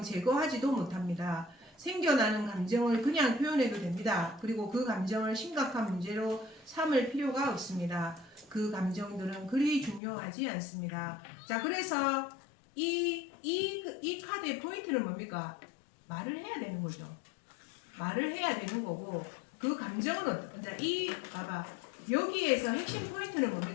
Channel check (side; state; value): right; drops out; at 10.0 s